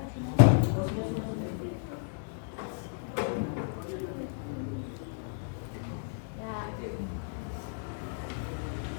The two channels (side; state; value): right; silent; digital silence